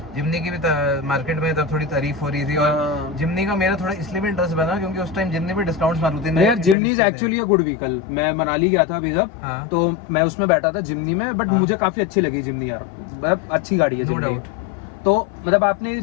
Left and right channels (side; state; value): right; drops out; at 6.8 s